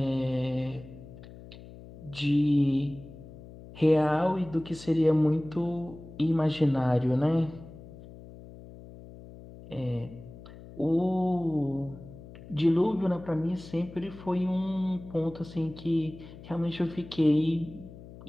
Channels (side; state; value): left; noise; hum, 17 dB below the sound